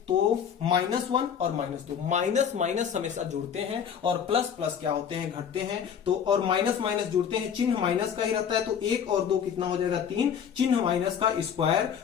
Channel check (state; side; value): quieter; right; 7.9 dB